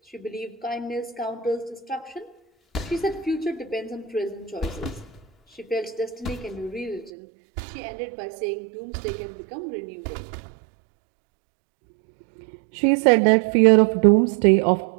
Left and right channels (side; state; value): left; drops out; at 7.1 s